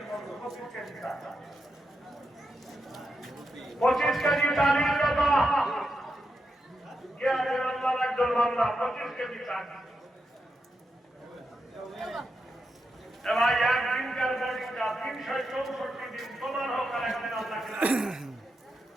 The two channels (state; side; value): normal; both; correlation 0.86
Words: 25 কেজি চাল 25 কেজি চালের কথা একজন বাংলা 25 কেজি চাল এবার একদিনকার বোর্ডিংটা 364 দিন তোমার হোক আর একদিন আল্লাহ